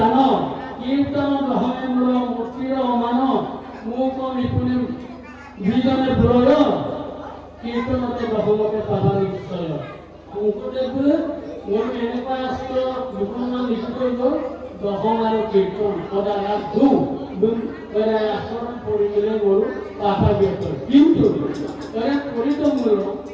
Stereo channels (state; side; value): identical; both; correlation 1.00